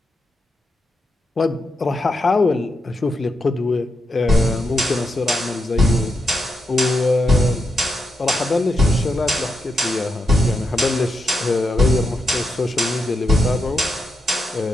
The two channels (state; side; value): normal; both; correlation 0.85